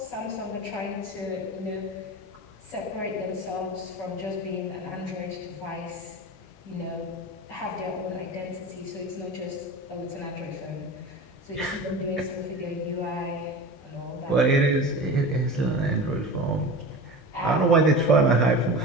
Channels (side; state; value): right; late; 15 ms